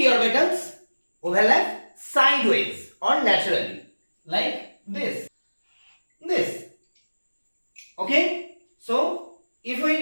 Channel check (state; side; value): inverted; both; correlation -1.00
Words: orbitals overlap sideways or laterally like this. Okay, so if